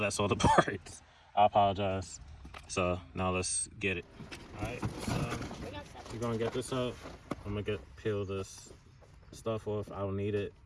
all the parts. I apologize. So now let's get it. Alright, so you're going to get this up. I'm going to peel this stuff off. I don't need it.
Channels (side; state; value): both; identical; correlation 1.00